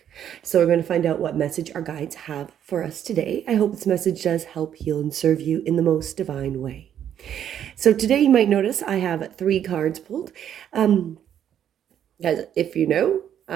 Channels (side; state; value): left; quieter; 9.8 dB